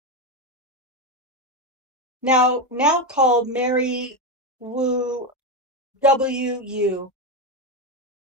Now called Mary Wu WU.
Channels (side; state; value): both; normal; correlation 0.11